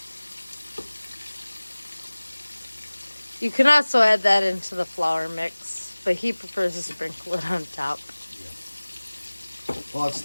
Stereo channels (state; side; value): inverted; both; correlation -1.00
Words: You can also add that into the flour mix, but he prefers to sprinkle it on top. Yeah. Well, that's